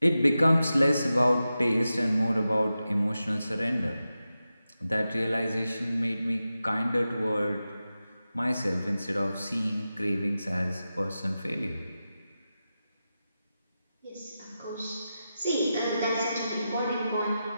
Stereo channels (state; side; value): inverted; both; correlation -0.92